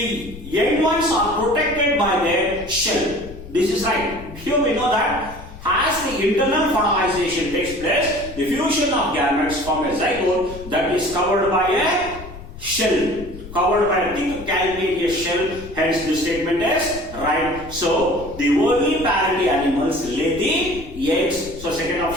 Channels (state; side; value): noise; left; rumble, 14 dB below the sound